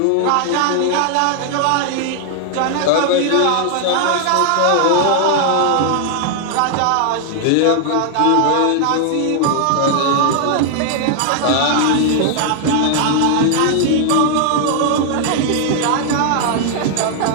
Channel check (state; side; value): different; both; correlation 0.00